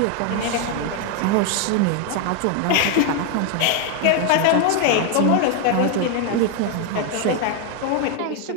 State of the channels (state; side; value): different; both; correlation 0.01